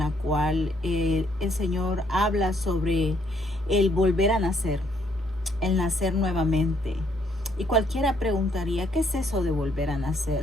cual el Señor habla sobre el volver a nacer, el nacer nuevamente. Y cualquiera preguntaría, ¿qué es eso de volver a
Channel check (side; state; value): both; normal; correlation 0.69